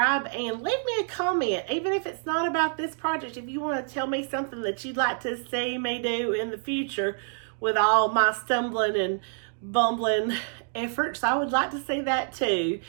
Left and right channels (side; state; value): left; silent; digital silence